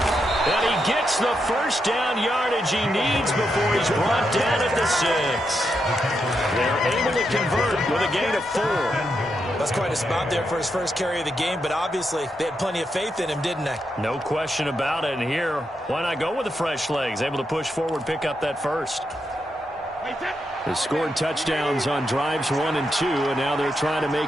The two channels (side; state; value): both; normal; correlation 0.83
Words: And he gets the first down yardage he needs before he's brought down at the 6. They're able to convert with a gain of 4. That's quite a spot there for his first carry of the game, but obviously they had plenty of faith in him, didn't they? No question about it. And here, why not go with the fresh legs? Able to push forward, pick up that first. They scored touchdowns on drives 1 and 2, and now they're trying to